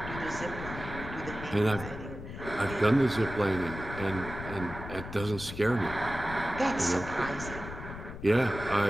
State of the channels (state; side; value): noise; left; rumble, 10 dB below the sound